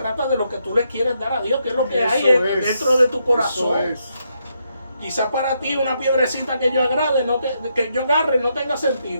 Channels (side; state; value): both; inverted; correlation -0.79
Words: de lo que tú le quieres dar a Dios, que es lo que hay dentro de tu corazón. Quizás para ti una piedrecita que yo agarre no tenga